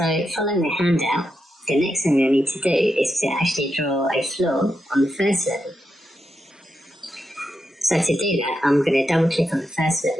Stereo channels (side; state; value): both; normal; correlation 0.86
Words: following the handout, the next thing I need to do is to actually draw a floor on the first level. So to do that, I'm going to double click on the first